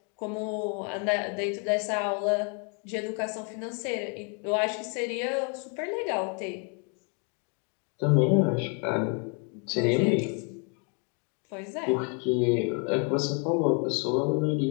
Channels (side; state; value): right; quieter; 37.7 dB